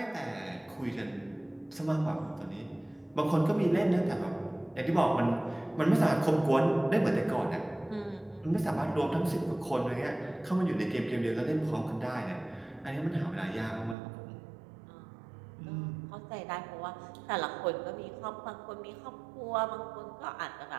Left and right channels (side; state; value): left; drops out; at 14.0 s